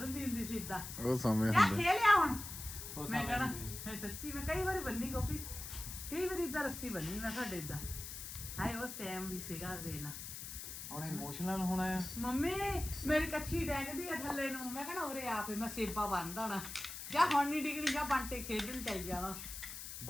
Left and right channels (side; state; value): left; noise; hiss, 9 dB below the sound